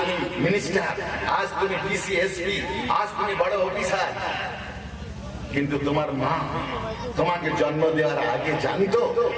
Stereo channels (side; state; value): both; identical; correlation 1.00